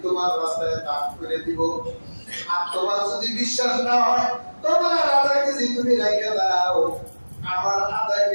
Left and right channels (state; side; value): inverted; both; correlation -1.00